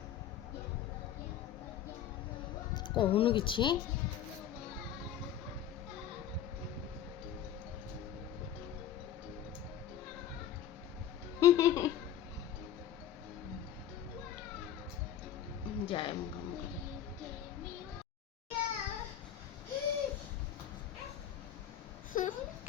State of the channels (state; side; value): quieter; right; 10.1 dB